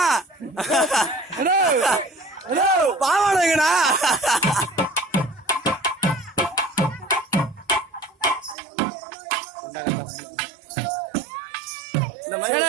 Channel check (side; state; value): left; drops out; at 8.6 s